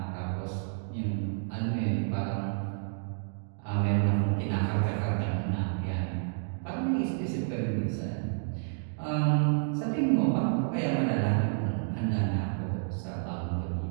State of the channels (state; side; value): silent; left; digital silence